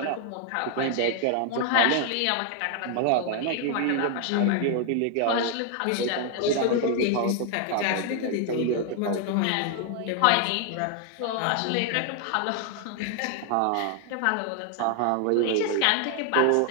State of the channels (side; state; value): both; different; correlation 0.00